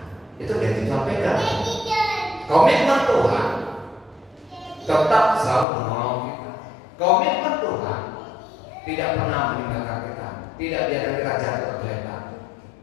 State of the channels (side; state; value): right; drops out; at 5.7 s